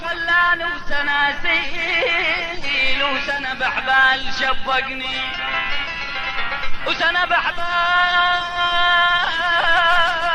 خلاني، وسناسيل وسنة بحبال شبقني، وسنة بحبال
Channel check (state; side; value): identical; both; correlation 1.00